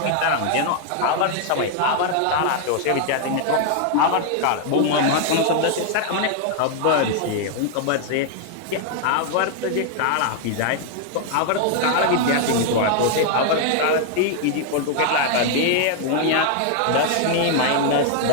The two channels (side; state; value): both; different; correlation 0.00